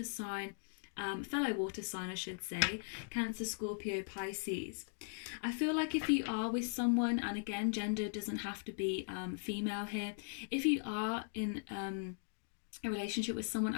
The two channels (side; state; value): right; silent; digital silence